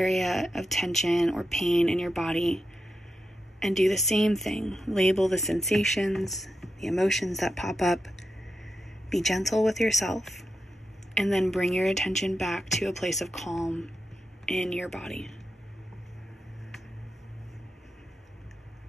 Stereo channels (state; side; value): normal; both; correlation 0.88